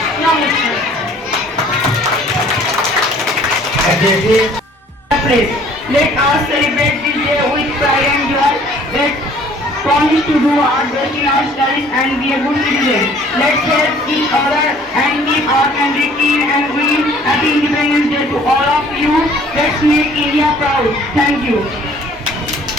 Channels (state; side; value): normal; both; correlation 0.55